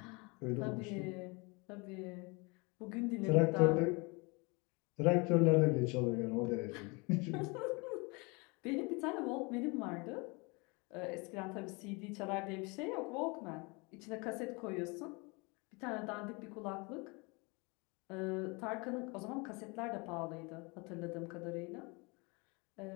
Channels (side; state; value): right; quieter; 29.0 dB